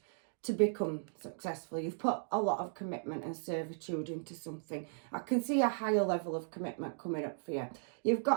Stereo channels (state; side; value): silent; left; digital silence